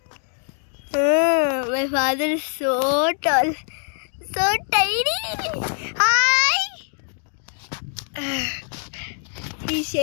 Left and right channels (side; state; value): right; silent; 58 dB below the other